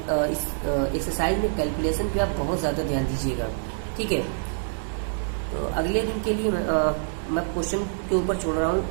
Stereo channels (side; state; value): left; silent; 61 dB below the other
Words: इस एक्सरसाइज में कैलकुलेशन पे आप बहुत ज़्यादा ध्यान दीजिएगा, ठीक है। तो अगले दिन के लिए मैं क्वेश्चन के ऊपर छोड़ रहा हूँ,